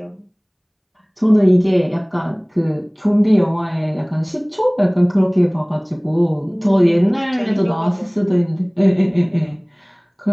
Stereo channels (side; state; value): both; identical; correlation 1.00